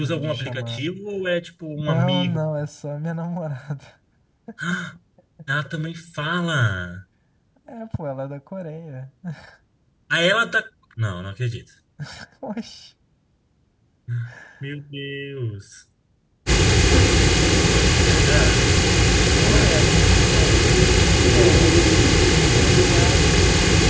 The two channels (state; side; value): identical; both; correlation 1.00